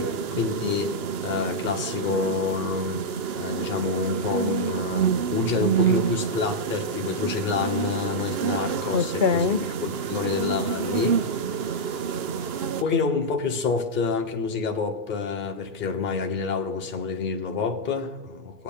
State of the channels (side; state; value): left; late; 2.9 ms